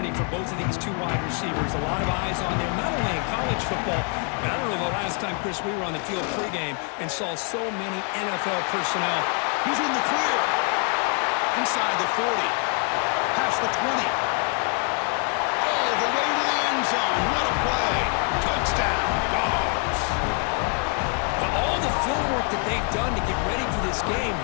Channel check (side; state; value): right; quieter; 40.0 dB